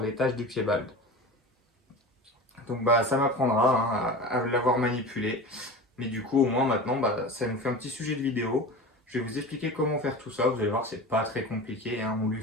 taches du pied-balde. Donc ça m'apprendra, hein, à l'avoir manipulé. Mais du coup au moins maintenant ça nous fait un petit sujet de vidéo. Je vais vous expliquer comment faire tout ça. Vous allez voir, c'est pas très compliqué, hein. On lui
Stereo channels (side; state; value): both; normal; correlation 0.32